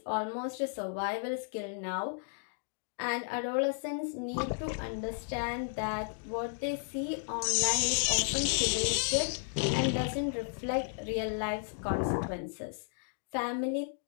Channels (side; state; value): right; silent; digital silence